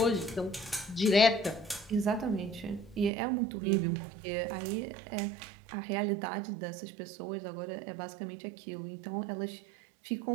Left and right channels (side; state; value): left; drops out; at 3.1 s